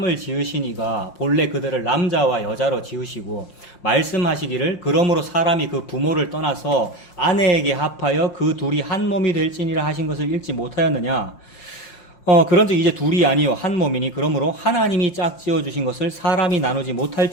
지으시니가 본래 그들을 남자와 여자로 지으시고 말씀하시기를 그러므로 사람이 그 부모를 떠나서 아내에게 합하여 그 둘이 한 몸이 될지니라 하신 것을 읽지 못하였느냐? 그런즉 이제 둘이 아니요 한 몸이니 그러므로 하나님이 짝지어 주신 것을 사람이 나누지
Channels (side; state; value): right; late; 5.6 ms